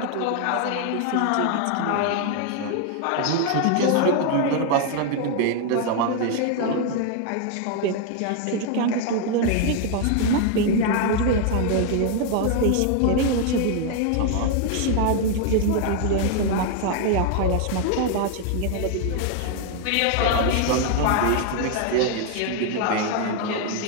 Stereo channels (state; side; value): different; both; correlation 0.00